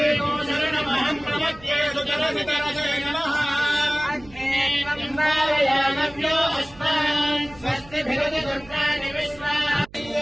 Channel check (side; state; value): right; noise; hum, 22 dB below the sound